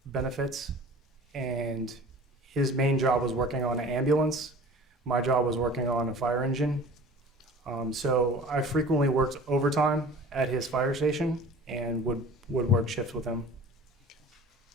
benefits, and his main job was working on an ambulance. My job was working on a fire engine. So I frequently worked overtime at his fire station and would work shifts with him.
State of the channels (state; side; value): normal; both; correlation 0.43